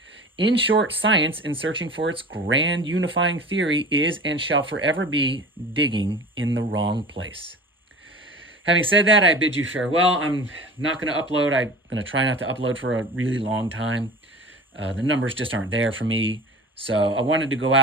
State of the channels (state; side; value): normal; both; correlation 0.38